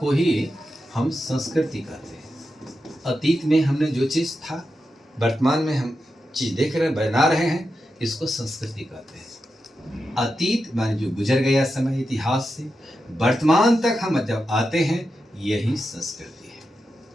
ही हम संस्कृति कहते हैं। अतीत में हमने जो चीज था, वर्तमान में हम चीज देख रहे हैं, बना रहे हैं, इसको संस्कृति कहते हैं। अतीत माने जो गुजर गया समय इतिहास से, वर्तमान तक हम जब आते हैं, यही संस्कृति है।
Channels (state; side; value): normal; both; correlation 0.89